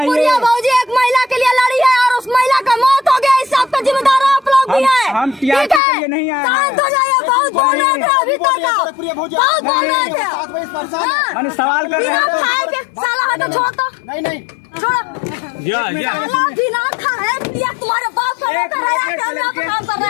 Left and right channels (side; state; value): right; drops out; at 5.8 s